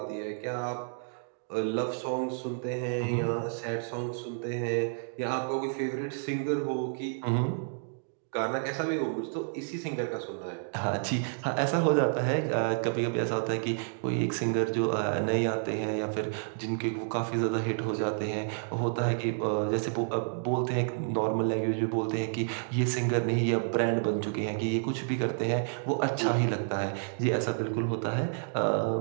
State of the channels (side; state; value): left; silent; digital silence